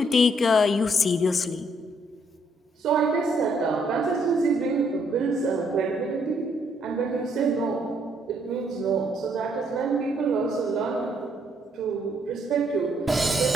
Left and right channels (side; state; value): both; normal; correlation 0.70